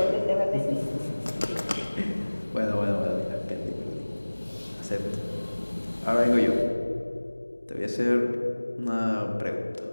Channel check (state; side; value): inverted; both; correlation -1.00